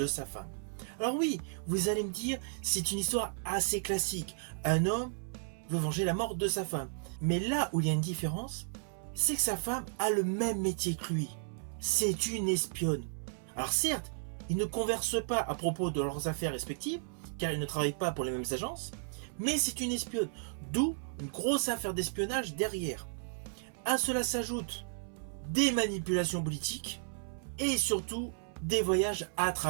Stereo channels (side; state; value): left; silent; 55 dB below the other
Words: sa femme. Alors oui, vous allez me dire, c'est une histoire assez classique. Un homme veut venger la mort de sa femme. Mais là où il y a une différence, c'est que sa femme a le même métier que lui. C'est une espionne. Alors certes, ils ne conversent pas à propos de leurs affaires respectives, car ils ne travaillent pas pour les mêmes agences, mais c'est une espionne, d'où une grosse affaire d'espionnage derrière. À cela s'ajoutent des manipulations politiques et surtout des voyages à